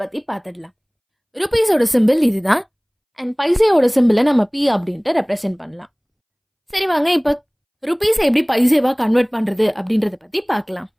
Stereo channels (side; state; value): both; identical; correlation 1.00